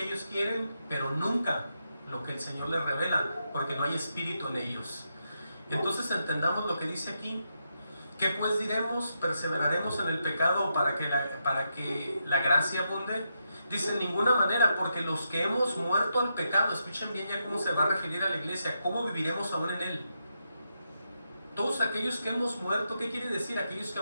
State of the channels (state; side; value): inverted; both; correlation -0.83